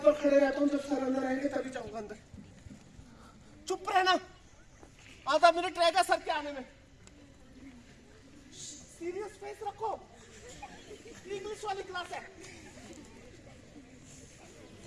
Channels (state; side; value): identical; both; correlation 1.00